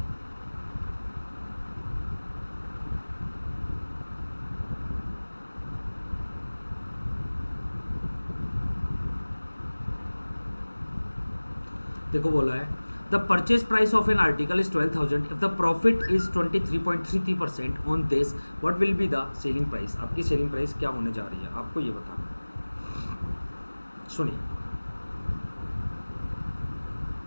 देखो बोला है the the purchase price of an article is 12,000 if the profit is 23.33% on this, what will be the selling price. आपकी सेलिंग प्राइस क्या होने जा रही है, आपको ये बताना। सुनिए,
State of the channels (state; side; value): inverted; both; correlation -1.00